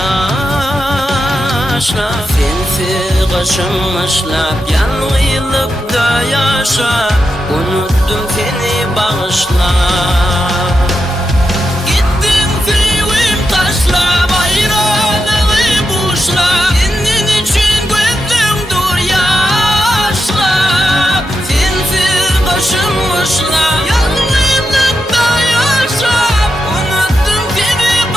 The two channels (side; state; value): both; normal; correlation 0.87